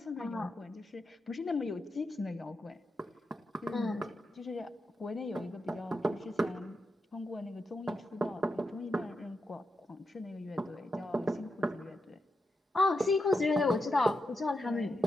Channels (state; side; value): normal; both; correlation 0.86